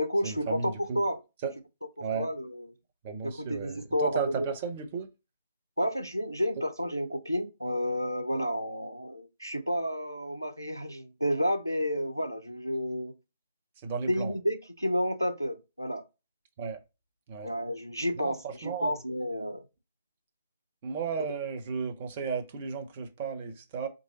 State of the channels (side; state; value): both; inverted; correlation -0.81